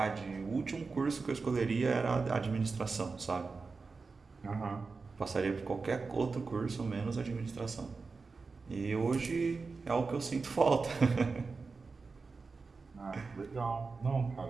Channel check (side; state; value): left; quieter; 4.4 dB